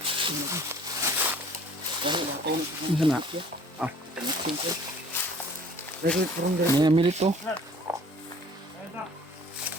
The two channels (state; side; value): normal; both; correlation 0.52